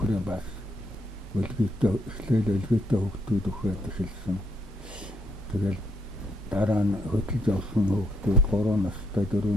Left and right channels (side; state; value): both; normal; correlation 0.75